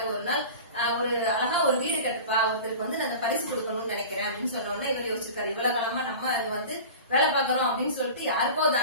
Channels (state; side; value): inverted; both; correlation -0.36